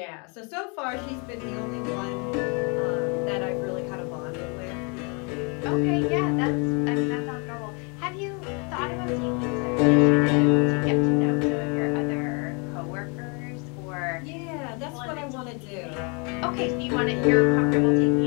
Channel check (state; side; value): quieter; right; 34.1 dB